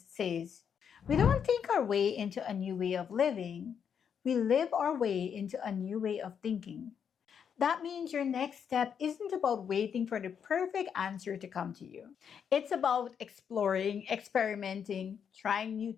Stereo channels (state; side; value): quieter; right; 7.5 dB